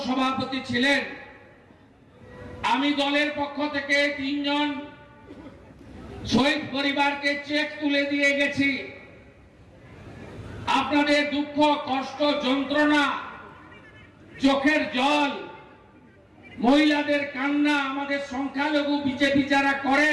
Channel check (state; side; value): identical; both; correlation 1.00